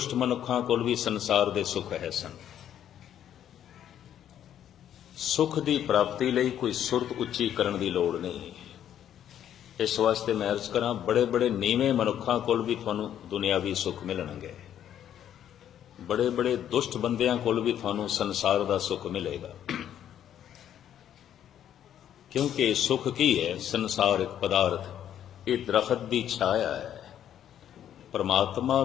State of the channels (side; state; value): right; quieter; 10.3 dB